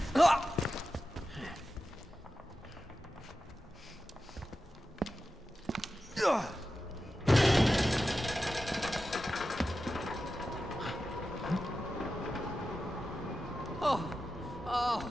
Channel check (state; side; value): normal; both; correlation 0.92